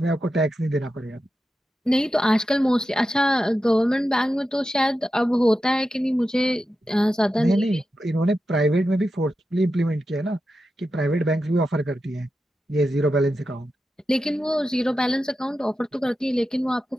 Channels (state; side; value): normal; both; correlation 0.90